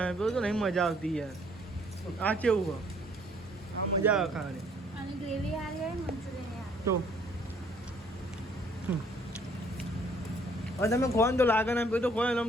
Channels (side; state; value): both; normal; correlation 0.61